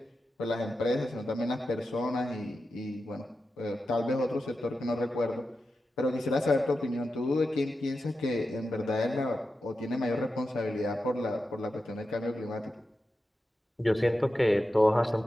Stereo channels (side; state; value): both; normal; correlation 0.91